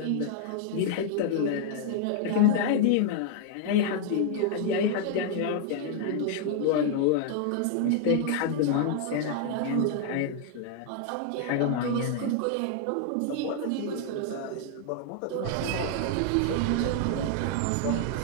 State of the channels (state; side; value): different; both; correlation 0.00